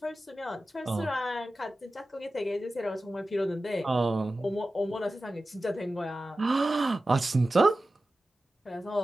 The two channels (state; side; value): normal; both; correlation 0.94